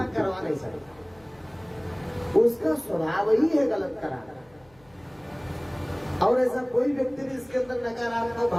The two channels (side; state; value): left; noise; hum, 30 dB below the sound